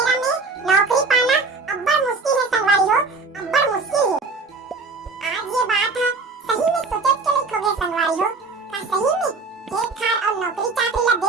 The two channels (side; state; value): left; quieter; 3.9 dB